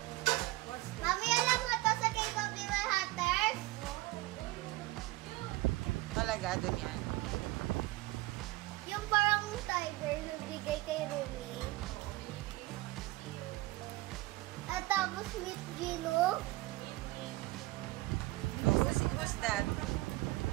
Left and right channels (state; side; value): quieter; left; 19.7 dB